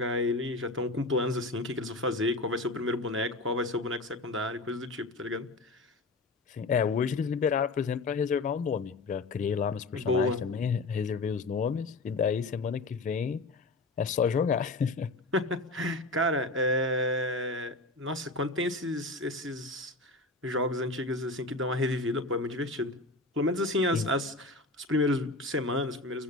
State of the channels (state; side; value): quieter; right; 3.1 dB